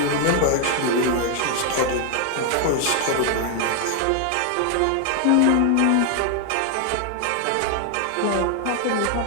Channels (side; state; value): both; different; correlation 0.00